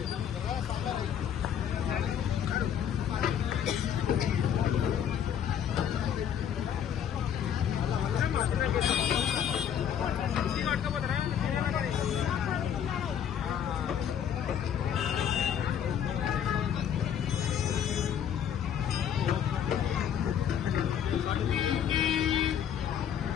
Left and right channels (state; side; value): quieter; right; 8.9 dB